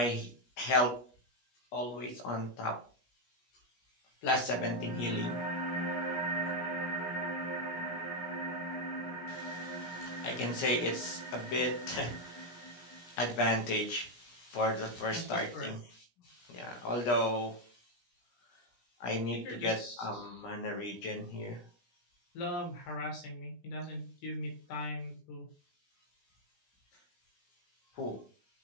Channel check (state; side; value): late; right; 17 ms